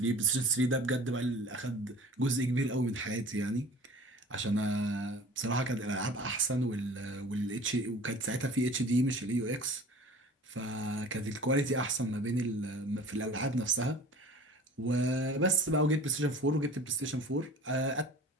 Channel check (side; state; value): both; normal; correlation 0.42